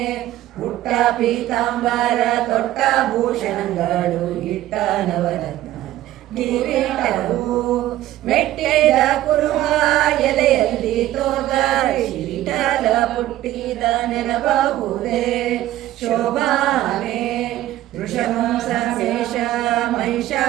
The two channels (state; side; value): quieter; left; 14.5 dB